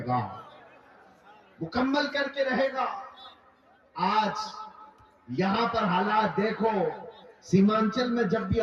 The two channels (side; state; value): both; identical; correlation 1.00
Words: گا، مکمل کر کے رہے گا۔ آج یہاں پر حالات دیکھو، سیمانچل میں جب بھی